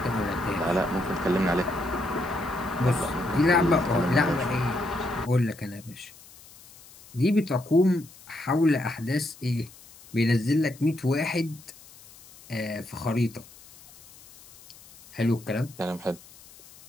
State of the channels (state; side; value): noise; left; hiss, 22 dB below the sound